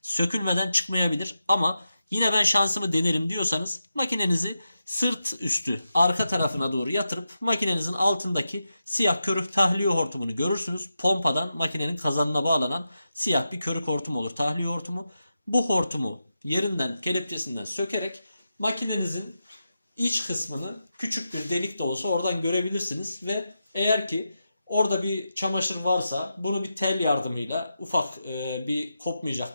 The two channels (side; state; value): both; inverted; correlation -0.89